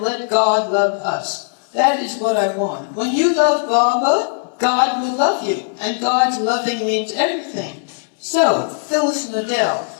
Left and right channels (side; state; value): right; silent; 67 dB below the other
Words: let God love us. That is what I want. When you love Baba, God will love you, and God's loving means everything. So, Phyllis and Adele,